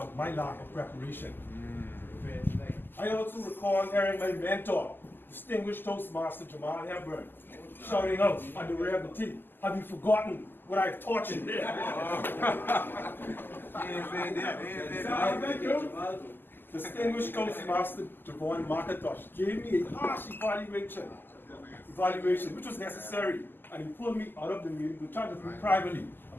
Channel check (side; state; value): right; late; 0.094 ms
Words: my lack of preparation. I also recall hearing my mentor, distinguished Toastmaster Jamaal shouting out on the rear of the team, "Have you forgotten what I've taught you?" Distinguished Toastmaster Javon McIntosh gave me a harsh evaluation which was necessary, and he pulled me out of the meeting to chat with me privately